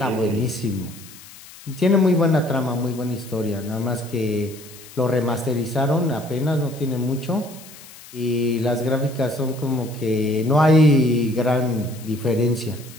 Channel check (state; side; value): noise; left; hiss, 19 dB below the sound